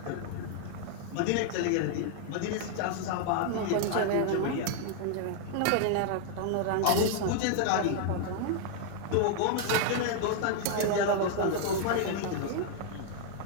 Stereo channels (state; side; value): different; both; correlation 0.00